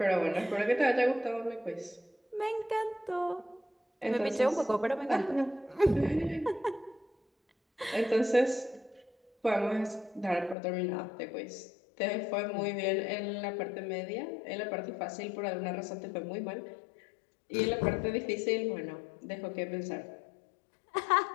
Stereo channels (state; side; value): drops out; right; at 10.6 s